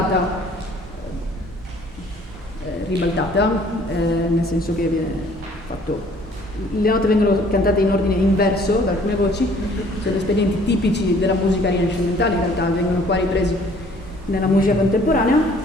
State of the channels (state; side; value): normal; both; correlation 0.57